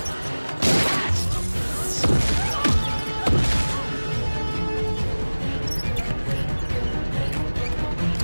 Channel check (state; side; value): inverted; both; correlation -1.00